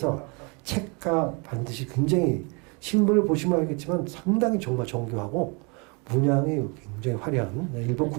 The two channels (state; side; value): quieter; left; 31.4 dB